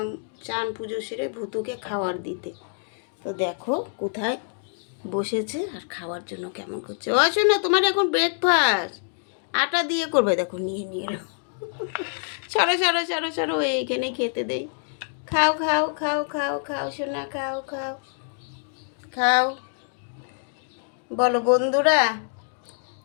চান পুজো সেরে ভুতুকে খাওয়ার দিতে। তো দেখো কোথায় বসেছে আর খাওয়ার জন্য কেমন করছে। ও শোনো, তোমার এখন ব্রেকফাস্ট আটা দিয়ে করবে। দেখো নিয়ে নিয়ে এলো। সরো সরো সরো সরো, এইখানে খেতে দেই। খাও খাও খাও খাও খাও সোনা, খাও খাও খাও। বলো বন্ধুরা,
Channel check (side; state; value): right; silent; digital silence